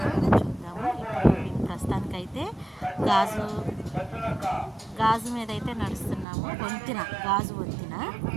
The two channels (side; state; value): left; drops out; at 6.2 s